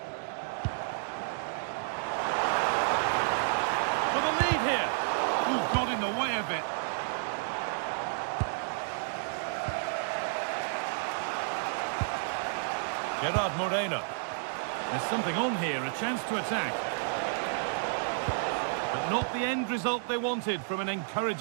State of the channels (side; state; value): left; silent; digital silence